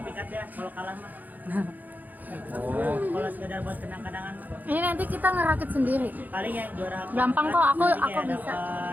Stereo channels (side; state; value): left; late; 0.083 ms